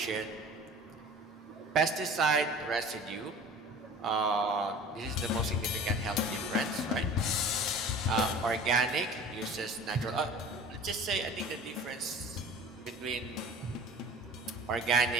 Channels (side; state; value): both; normal; correlation 0.42